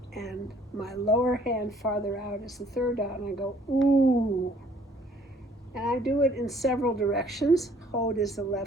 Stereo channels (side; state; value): both; normal; correlation 0.59